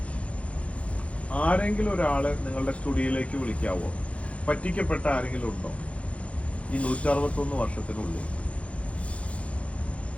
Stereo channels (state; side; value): late; right; 0.063 ms